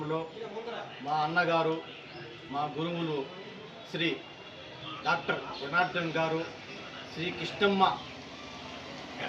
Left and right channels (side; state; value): both; identical; correlation 1.00